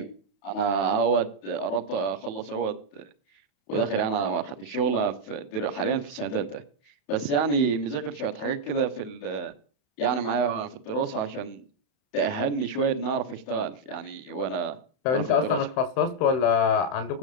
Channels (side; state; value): right; late; 31 ms